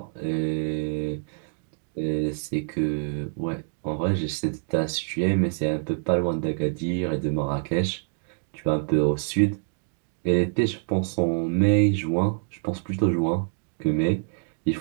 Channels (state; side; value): silent; left; digital silence